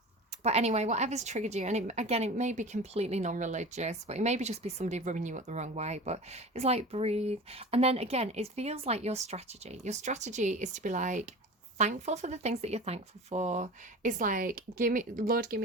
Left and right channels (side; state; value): both; normal; correlation 0.34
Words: anyway, whatever's triggered you, and it may be completely non-religious, but it may be just be somebody rubbing you up the wrong way, but it's like, breathe. And then again, it feels like your strategy is to be like, thankful for the things that you're thankful for. It's like, Lord, give